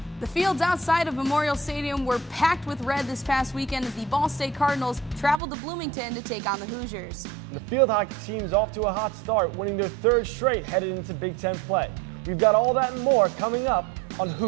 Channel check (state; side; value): drops out; left; at 5.4 s